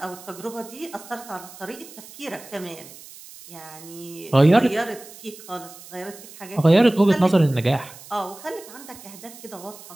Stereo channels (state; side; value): noise; right; hiss, 18 dB below the sound